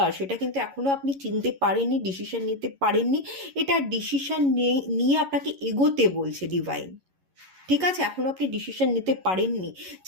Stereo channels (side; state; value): left; late; 11 ms